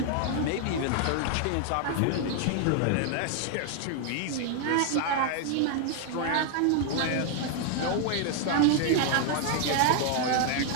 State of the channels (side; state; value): both; different; correlation 0.00